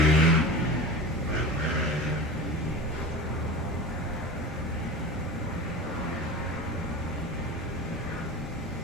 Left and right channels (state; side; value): normal; both; correlation 0.32